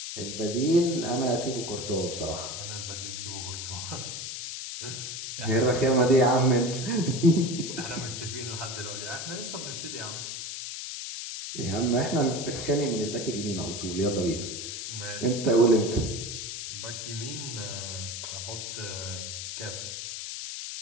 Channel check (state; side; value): noise; left; hiss, 6 dB below the sound